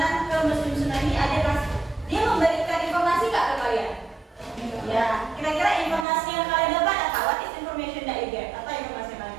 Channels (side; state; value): left; drops out; at 6.1 s